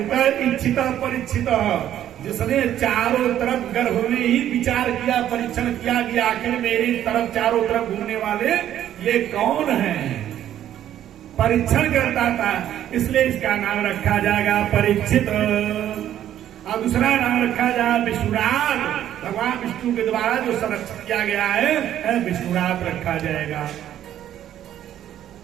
इच्छित परिचित, जिसने चारों तरफ गर्भ में ही विचार किया, परीक्षण किया कि आखिर मेरी तरफ चारों तरफ घूमने वाले ये कौन है, परीक्षण करता था, इसलिए इसका नाम रखा जाएगा परीक्षित। और दूसरा नाम रखा जाए विष्णुराज, भगवान विष्णु के द्वारा जो संरक्षित किया गया है विष्णुराज रखा जाएगा।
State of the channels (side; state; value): left; quieter; 11.3 dB